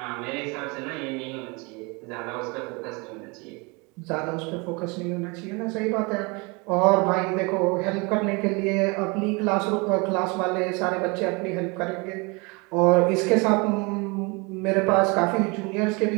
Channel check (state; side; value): quieter; left; 28.6 dB